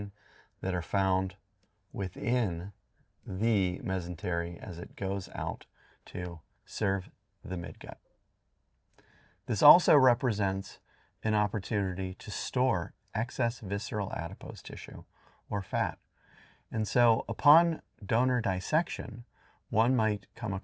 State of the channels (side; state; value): both; identical; correlation 1.00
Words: that are found within the mesentery as it goes out to serve the midgut. This also represents an opportunity to store excess visceral adipose tissue or fat. And so upon donor dissection, one might come